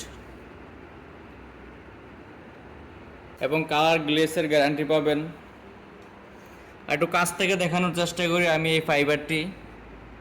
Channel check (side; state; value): both; identical; correlation 1.00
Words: এবং কালার গ্লেসের গ্যারান্টি পাবেন। একটু কাছ থেকে দেখানোর চেষ্টা করি আমি এই ফাইবারটি।